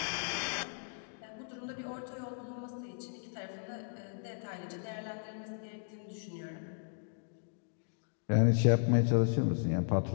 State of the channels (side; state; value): right; silent; digital silence